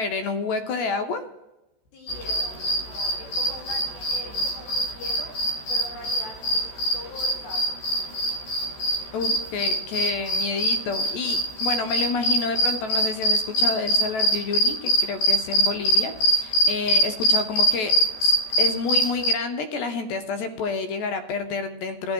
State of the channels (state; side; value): late; right; 14 ms